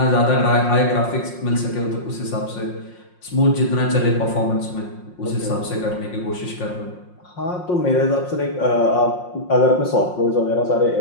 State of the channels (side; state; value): right; late; 5.6 ms